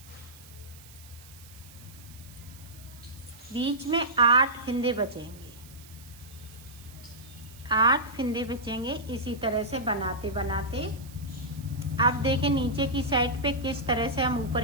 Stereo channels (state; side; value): noise; right; hiss, 21 dB below the sound